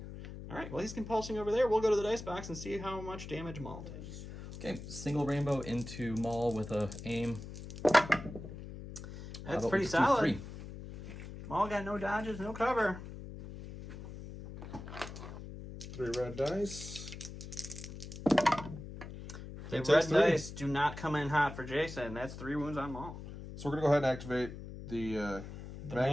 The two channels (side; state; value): left; noise; hum, 11 dB below the sound